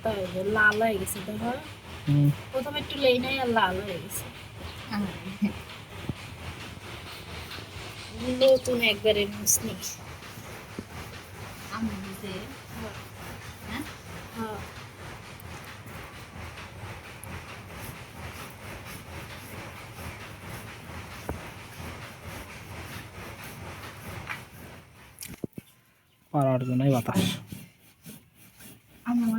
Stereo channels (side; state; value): both; identical; correlation 1.00